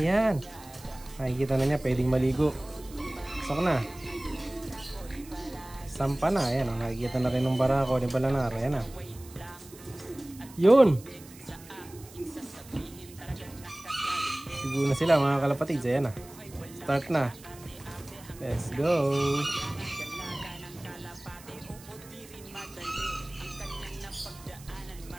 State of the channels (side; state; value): right; noise; hiss, 20 dB below the sound